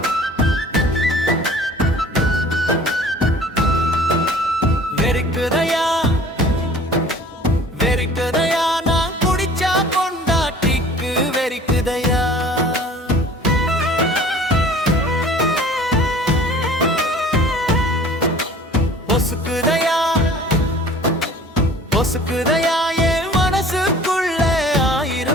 வெறிக்குதையா நான் குடிச்சா பொண்டாட்டிக்கு வெறிக்குதையா பொசுக்குதையா பொசுக்குதையா என் மனசுக்குள்ள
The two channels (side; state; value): both; normal; correlation 0.48